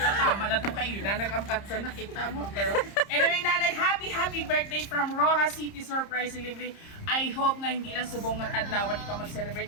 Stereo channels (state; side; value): late; right; 30 ms